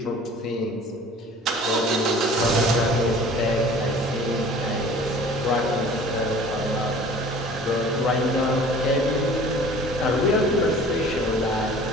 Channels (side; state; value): both; normal; correlation 0.46